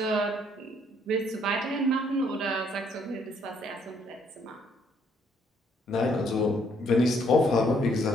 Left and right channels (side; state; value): both; normal; correlation 0.67